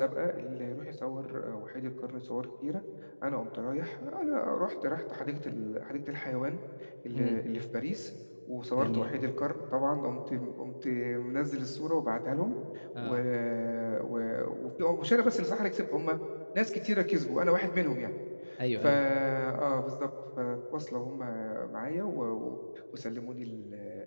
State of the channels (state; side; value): inverted; both; correlation -1.00